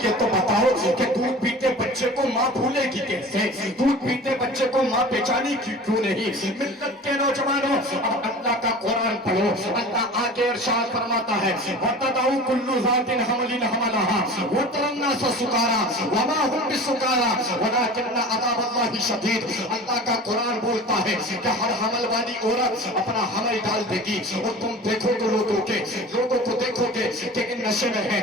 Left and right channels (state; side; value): normal; both; correlation 0.38